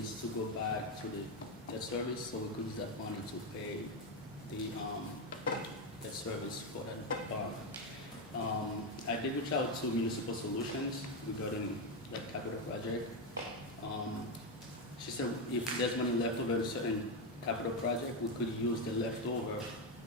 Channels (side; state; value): both; normal; correlation 0.08